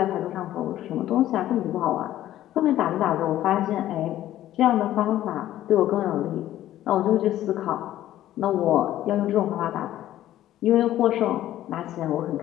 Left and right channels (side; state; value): right; quieter; 13.3 dB